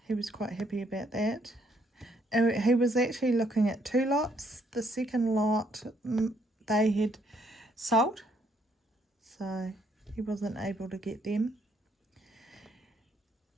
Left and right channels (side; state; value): both; normal; correlation 0.70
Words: he was quite happy about that. And he was actually looking at 2 lots. The second lot they had sold, so he wasn't able to get them.